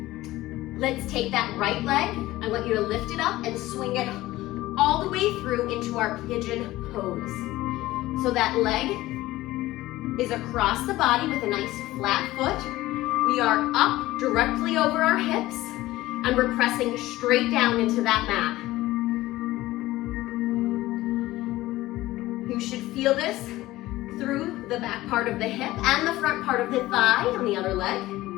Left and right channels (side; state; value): right; quieter; 17.1 dB